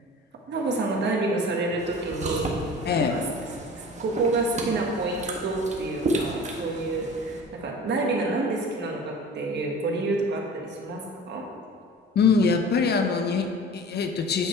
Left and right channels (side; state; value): both; normal; correlation 0.40